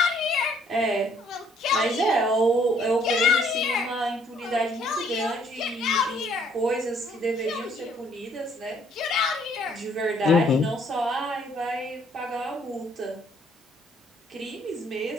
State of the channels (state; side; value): normal; both; correlation 0.64